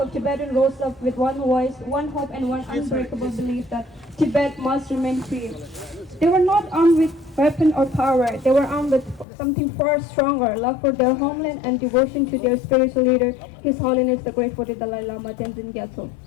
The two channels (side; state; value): right; drops out; at 9.2 s